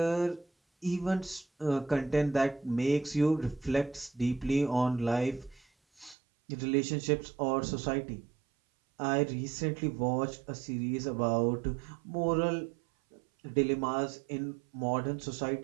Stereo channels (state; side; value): drops out; left; at 6.2 s